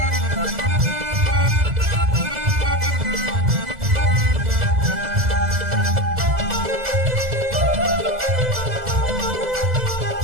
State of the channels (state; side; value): late; left; 2.0 ms